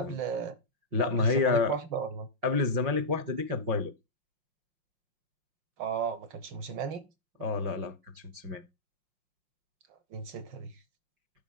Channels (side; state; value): left; late; 5.6 ms